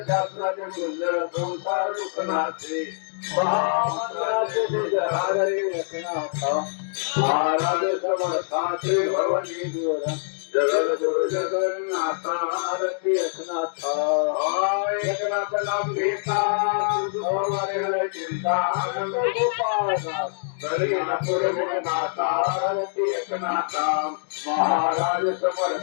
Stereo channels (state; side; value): silent; right; digital silence